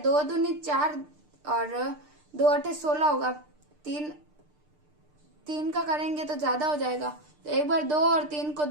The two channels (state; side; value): late; left; 6.7 ms